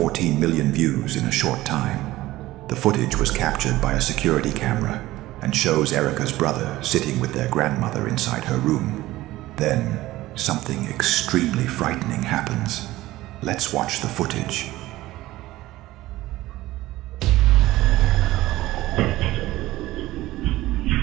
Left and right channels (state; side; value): quieter; left; 17.0 dB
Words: million views in a short time. The footage was captured by a security camera and shows Erica's brother sitting with their grandmother inside her room. Then, something extremely frightening happens. Let's watch the footage.